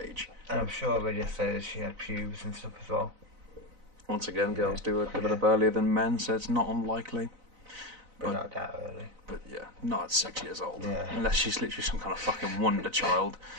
And I'm sure I read yesterday that she had pubes and stuff as well. Once again, girls do it develop Yeah. earlier than men, so it's not unlikely. But not that early. But yeah, not at 6 years old. Yeah. Unless she's literally some kind of fucking wonder child.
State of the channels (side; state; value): left; late; 4.0 ms